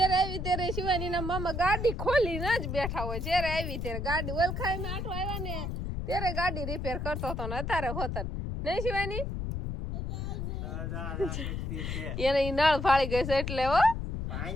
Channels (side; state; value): left; noise; rumble, 3 dB below the sound